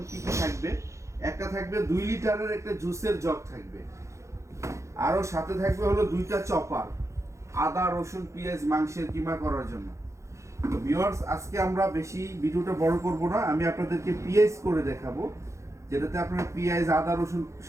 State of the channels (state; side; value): late; left; 0.14 ms